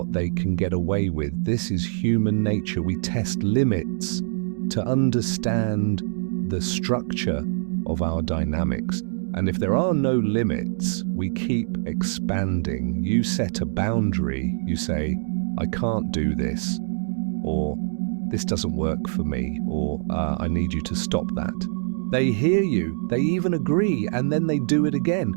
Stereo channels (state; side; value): silent; left; digital silence